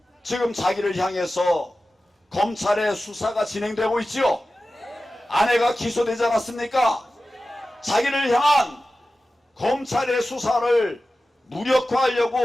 지금 자기를 향해서 검찰의 수사가 진행되고 있지요. 아내가 기소되지 않았습니까? 자기를 향한 검찰의 수사를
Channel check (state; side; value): normal; both; correlation 0.95